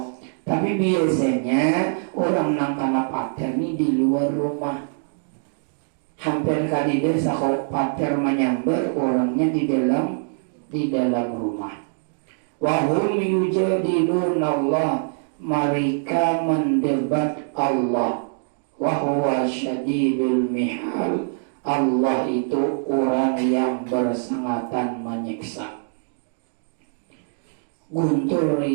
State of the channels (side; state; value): left; silent; digital silence